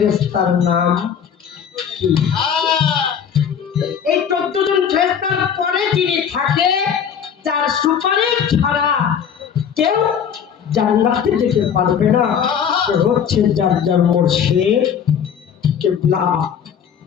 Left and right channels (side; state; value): right; quieter; 7.9 dB